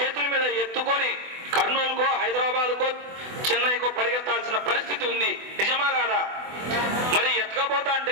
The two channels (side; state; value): left; late; 24 ms